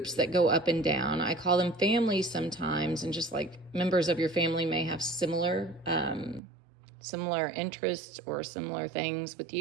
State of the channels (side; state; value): left; drops out; at 6.4 s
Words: that go up and down, I call them families sometimes, and just like members of your family may have similar interests or similar things with